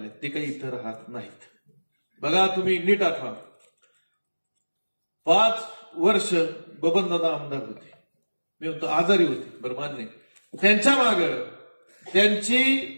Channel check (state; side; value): inverted; both; correlation -1.00